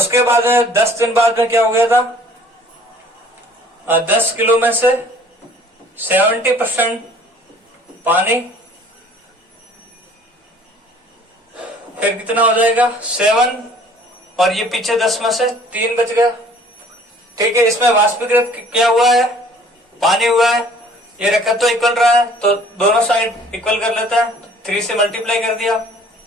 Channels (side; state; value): both; normal; correlation 0.53